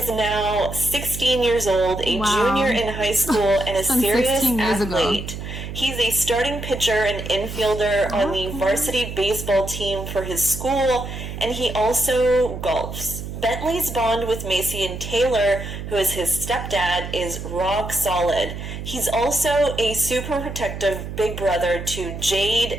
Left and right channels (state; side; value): noise; right; hum, 8 dB below the sound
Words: now 16 years old, a junior in high school, and a serious athlete. He's a starting pitcher and infielder on the varsity baseball team for his school, and he also golfs. Bentley's bond with Macy and Taylor, who is his stepdad, is rock solid. He's also a super protective big brother to Jade